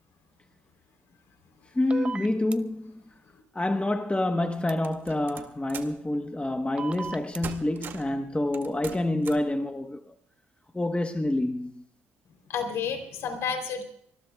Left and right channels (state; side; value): normal; both; correlation 0.91